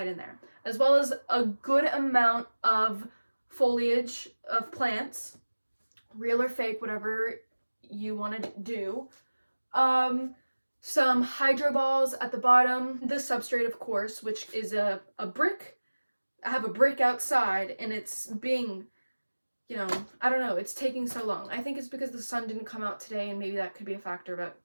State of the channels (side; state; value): both; inverted; correlation -1.00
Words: in there. As well as a good amount of foliage of plants, real or fake, whatever you want to do. Some hydro balls at the bottom. The substrate, of course, which is a brick. I have a brick outside, and it's being, I don't know, it's taking so long. I think it's because the sun didn't come out today, and maybe that could be a factor, but